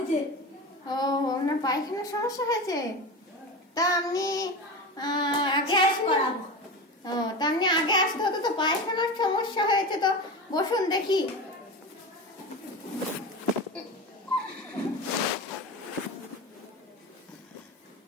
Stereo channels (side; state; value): both; normal; correlation 0.25